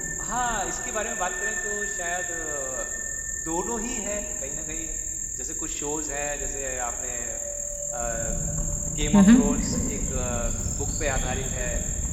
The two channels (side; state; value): both; identical; correlation 1.00